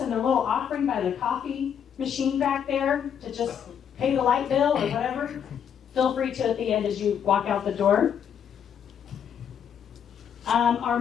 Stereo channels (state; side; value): quieter; right; 8.2 dB